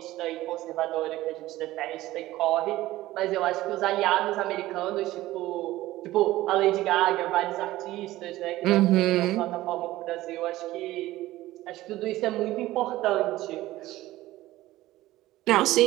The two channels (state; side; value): quieter; left; 16.4 dB